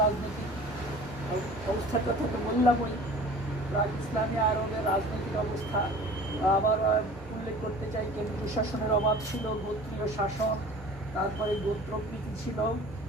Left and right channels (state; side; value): noise; right; hum, 25 dB below the sound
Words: রাজনৈতিক অবস্থার কথা তো বললামই। প্রাক ইসলামী আরবের রাজনৈতিক অবস্থা আবার উল্লেখ করতে চাই। কেন্দ্রীয় শাসনের অভাব ছিল, গোত্রীয় শাসন, তারপরে গোত্রপ্রীতি ছিল,